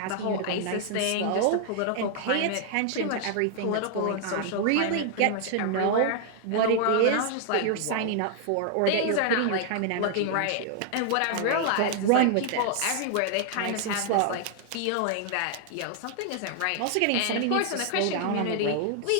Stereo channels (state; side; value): different; both; correlation 0.00